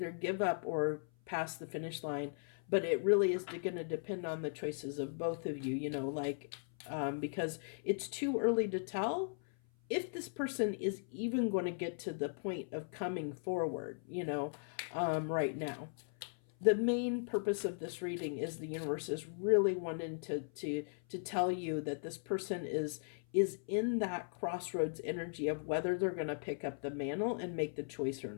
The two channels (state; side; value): silent; right; 53 dB below the other